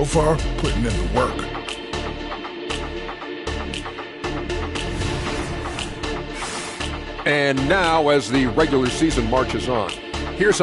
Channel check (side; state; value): both; identical; correlation 1.00